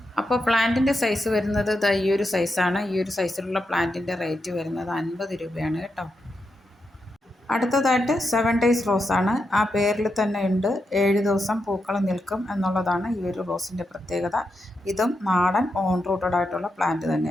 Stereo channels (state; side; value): normal; both; correlation 0.85